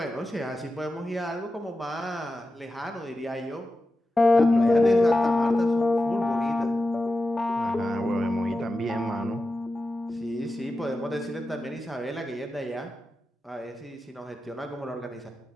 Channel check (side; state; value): both; normal; correlation 0.92